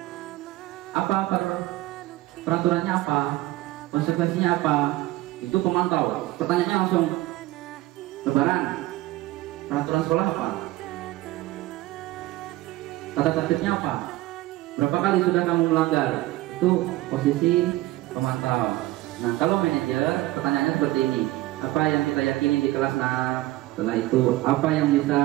apa peraturannya apa? Konsekuensinya apa? Itu pemantau. Pertanyaannya langsung, lebaran, peraturan sekolah apa? Tata tertibnya apa? Berapa kali sudah kamu melanggar? Itu posisi pemantau. Nah kalau manajer, pertanyaannya seperti ini, apa yang kita yakini di kelas 6? Setelah itu apa yang bisa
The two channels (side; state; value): left; quieter; 17.6 dB